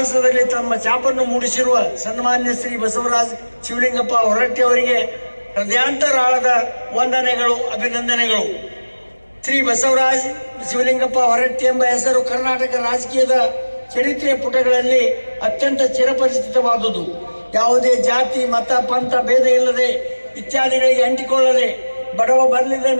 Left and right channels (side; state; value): both; inverted; correlation -1.00